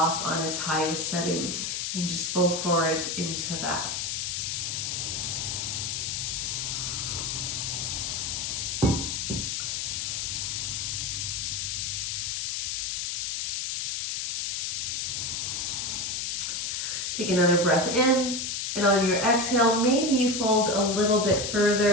on its highest setting and just fold forward into that. Take another breath in, and on your exhale, maybe you fold a little bit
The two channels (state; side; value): noise; left; hiss, 1 dB below the sound